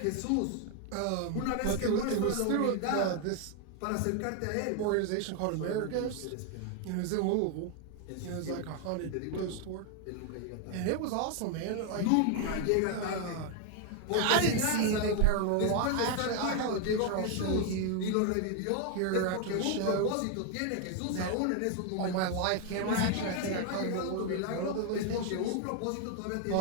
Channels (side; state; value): both; different; correlation 0.01